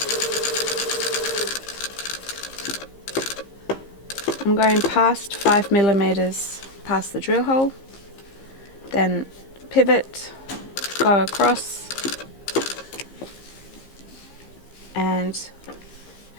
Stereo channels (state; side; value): late; right; 15 ms